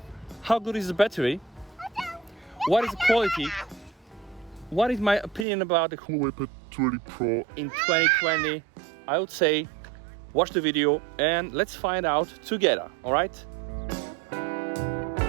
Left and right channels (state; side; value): drops out; left; at 5.5 s